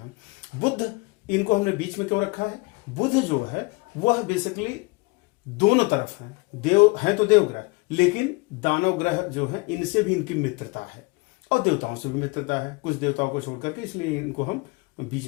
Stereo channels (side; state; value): right; quieter; 26.9 dB